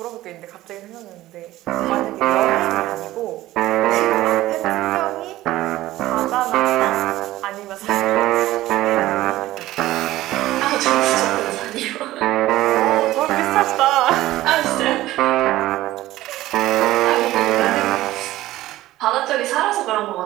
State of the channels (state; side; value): quieter; left; 16.0 dB